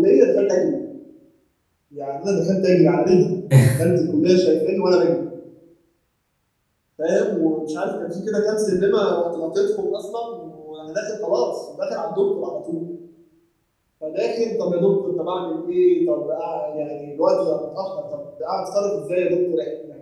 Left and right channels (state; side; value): identical; both; correlation 1.00